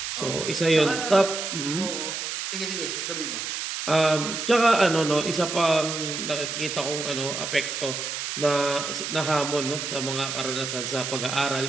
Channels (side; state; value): right; noise; hiss, 4 dB below the sound